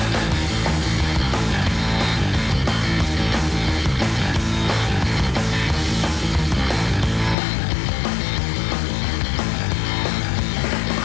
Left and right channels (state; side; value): drops out; right; at 7.4 s